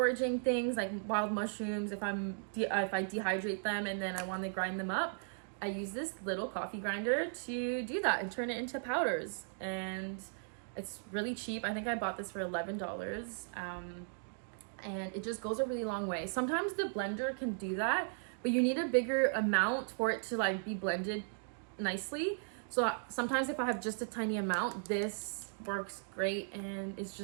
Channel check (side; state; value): left; silent; digital silence